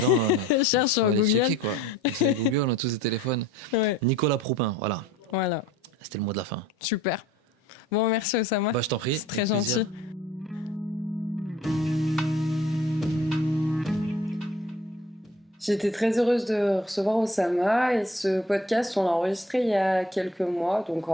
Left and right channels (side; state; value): both; normal; correlation 0.50